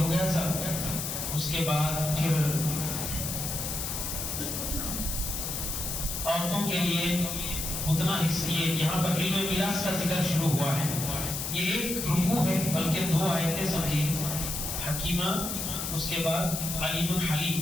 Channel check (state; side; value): noise; left; hiss, 3 dB below the sound